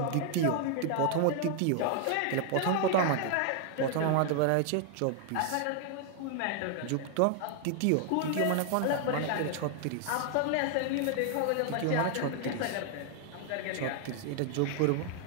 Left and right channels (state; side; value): different; both; correlation 0.00